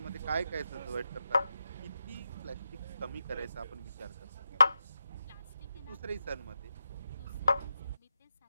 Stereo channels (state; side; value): inverted; both; correlation -0.88